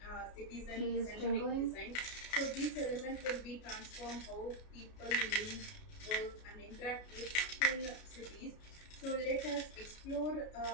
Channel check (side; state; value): right; late; 33 ms